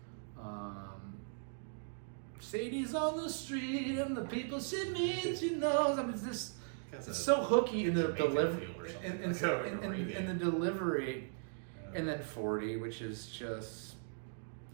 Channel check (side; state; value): left; silent; digital silence